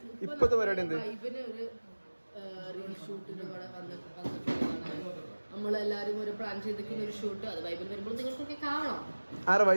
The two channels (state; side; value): inverted; both; correlation -1.00